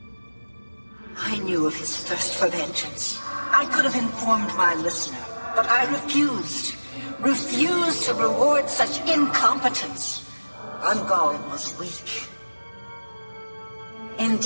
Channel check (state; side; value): inverted; both; correlation -1.00